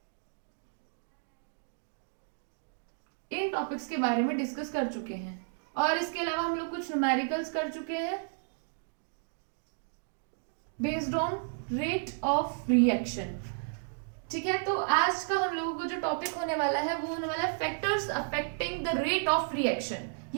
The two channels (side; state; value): left; silent; digital silence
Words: in topics के बारे में डिस्कस कर चुके हैं। और इसके अलावा हम लोग कुछ न्यूमेरिकल्स कर चुके हैं based on rate of reaction. ठीक है, तो आज का हम लोगों को जो टॉपिक होने वाला है वो होने वाला है factors affecting the rate of reaction,